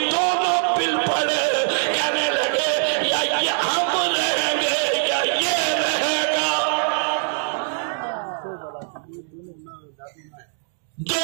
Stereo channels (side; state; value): left; silent; digital silence